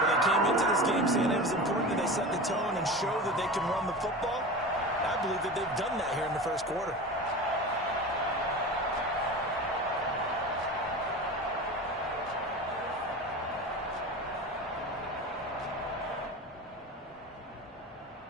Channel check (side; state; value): both; normal; correlation 0.31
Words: came into this game saying it was important that they set the tone and show that they can run the football. I believe that they've done that here in the first quarter.